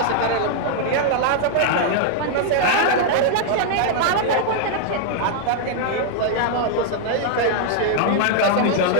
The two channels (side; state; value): both; different; correlation 0.00